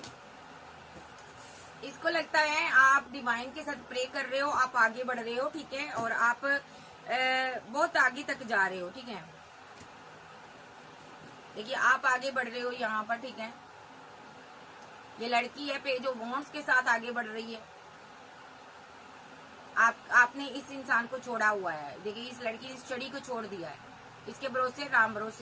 इसको लगता है आप डिवाइन के साथ प्रे कर रहे हो, आप आगे बढ़ रहे हो, ठीक है, और आप बहुत आगे तक जा रहे हो, ठीक है। देखिए आप आगे बढ़ रहे हो यहाँ पर, ठीक है। ये लड़की है पेज ऑफ वॉन्ड्स के साथ आगे बढ़ रही है। आपने इस इंसान को छोड़ा हुआ है। देखिए इस लड़की ने इस छड़ी को छोड़ दिया है, इसके भरोसे, राम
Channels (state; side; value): identical; both; correlation 1.00